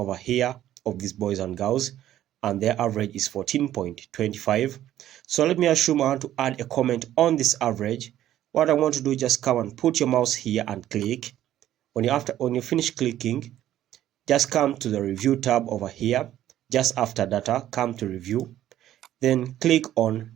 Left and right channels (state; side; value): quieter; left; 12.5 dB